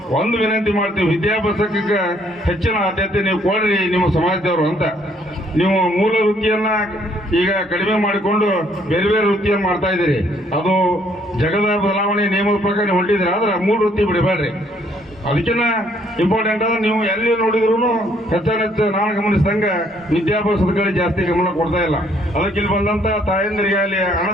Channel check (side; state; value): both; normal; correlation 0.66